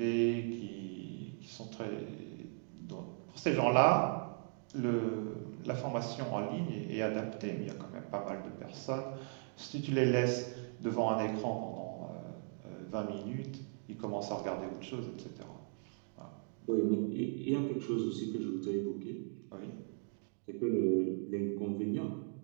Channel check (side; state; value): left; silent; 52 dB below the other